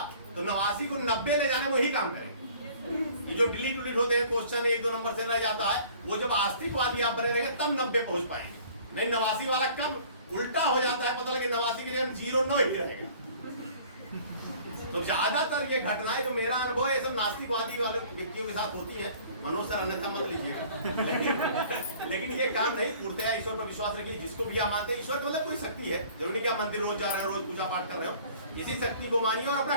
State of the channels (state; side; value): inverted; both; correlation -0.51